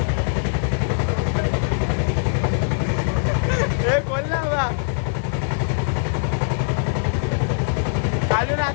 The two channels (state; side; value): silent; right; digital silence